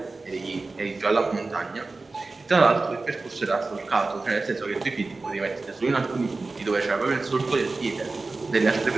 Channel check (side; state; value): left; quieter; 3.6 dB